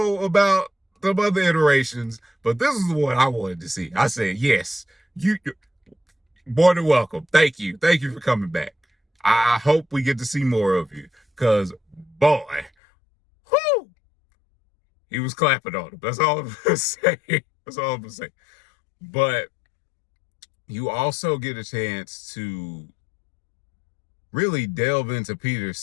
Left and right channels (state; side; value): drops out; right; at 12.7 s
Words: about some other iterations, but this is what I wanted to see. I said, yes, you more than welcome. Thank you. Thank you for coming back. I hope we get to see more of you. Because, boy, whoo, he was clapping on him. That's all I'm going to say. That's all I'm going to say. But you also get a chance to really delve into Peter's